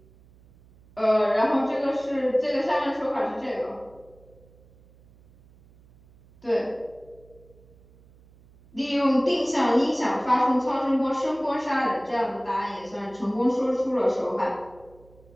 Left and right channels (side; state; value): right; noise; hum, 27 dB below the sound